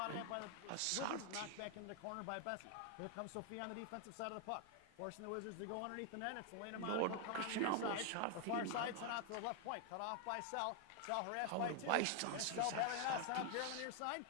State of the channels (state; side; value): different; both; correlation 0.00